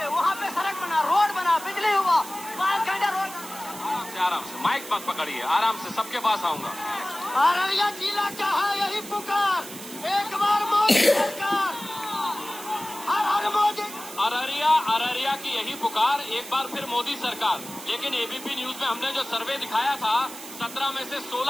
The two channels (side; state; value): right; noise; hiss, 13 dB below the sound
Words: वहाँ पे सड़क बना, रोड बना, बिजली हुआ, 5 घंटे रोड। आराम से, माइक मत पकड़िए, आराम से, सबके पास आऊंगा। अररिया जिला का है यही पुकार, एक बार मोदी सरकार, हर हर मोदी। अररिया की यही पुकार, एक बार फिर मोदी सरकार। लेकिन एबीपी न्यूज में हमने जो सर्वे दिखाया था, 17 में से